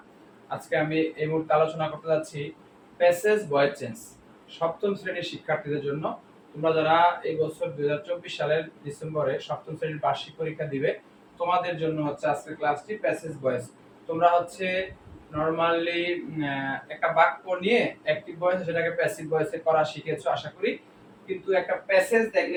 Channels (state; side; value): identical; both; correlation 1.00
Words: আজকে আমি এই মুহূর্তে আলোচনা করতে যাচ্ছি প্যাসেজ ভয়েস চেঞ্জ সপ্তম শ্রেণীর শিক্ষার্থীদের জন্য। তোমরা যারা এই বছর 2024 সালের ডিসেম্বরে সপ্তম শ্রেণীর বার্ষিক পরীক্ষা দিবে, তোমাদের জন্য হচ্ছে আজকের ক্লাসটি প্যাসেজ ভয়েস। তোমরা হচ্ছে নরমালি একটা বাক্য নিয়ে অ্যাক্টিভ ভয়েস সেটাকে প্যাসিভ ভয়েসে করা শিখেছো আশা করি, কিন্তু একটা প্যাসেজ